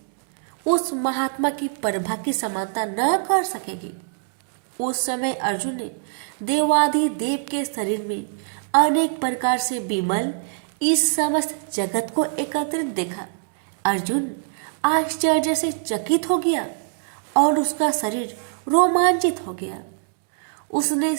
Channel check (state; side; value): silent; left; digital silence